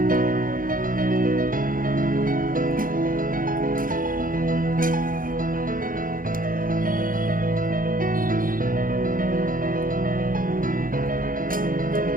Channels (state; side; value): late; left; 0.40 ms